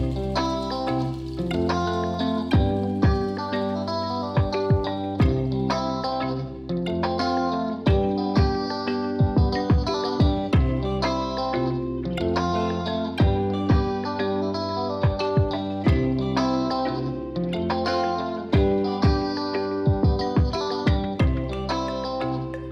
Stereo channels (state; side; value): identical; both; correlation 1.00